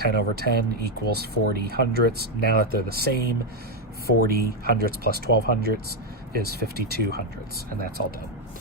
equals 40 hundredths. Now that they're the same, 40 hundredths plus 12 hundredths is 52 hundredths, and that's all done.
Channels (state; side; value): normal; both; correlation 0.04